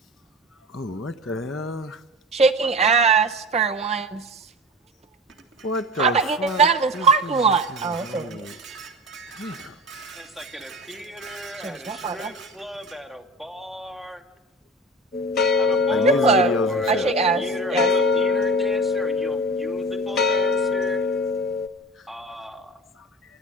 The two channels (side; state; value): both; normal; correlation 0.34